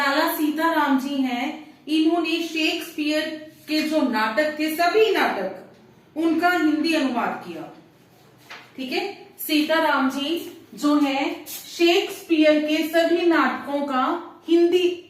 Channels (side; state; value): both; identical; correlation 1.00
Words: सीताराम जी हैं, इन्होंने शेक्सपियर के जो नाटक थे, सभी नाटक, उनका हिंदी अनुवाद किया। ठीक है, सीताराम जी जो है शेक्सपियर के सभी नाटकों का हिंदी